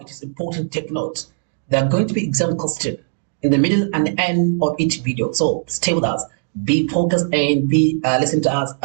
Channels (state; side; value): silent; left; digital silence